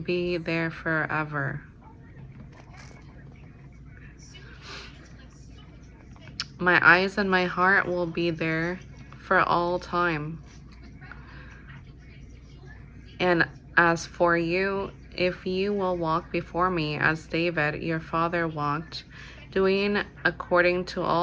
there forever. My eyes and my heart will be there for all time. And as for you, if you will walk before me as David your father walked, doing according to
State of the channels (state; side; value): identical; both; correlation 1.00